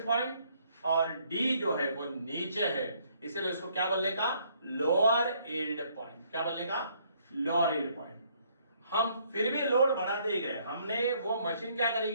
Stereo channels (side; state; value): both; inverted; correlation -0.66